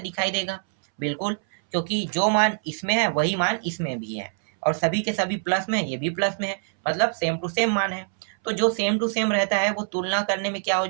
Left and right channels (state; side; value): silent; left; 62 dB below the other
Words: देगा, बिल्कुल, क्योंकि जो मान इसमें है वही मान इसमें भी है, और सभी के सभी प्लस में है, ये भी प्लस में है, मतलब सेम टू सेम मान है। तो जो सेम टू सेम रहता है वो तुलना करने में क्या हो